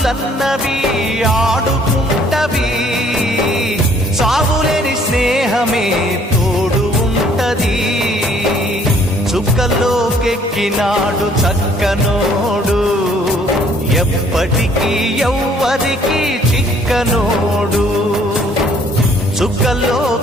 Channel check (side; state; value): both; normal; correlation 0.60